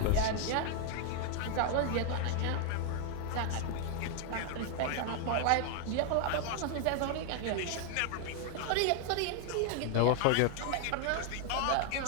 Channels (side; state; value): both; different; correlation 0.00